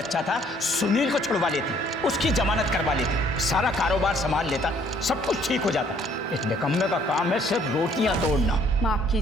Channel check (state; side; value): normal; both; correlation 0.62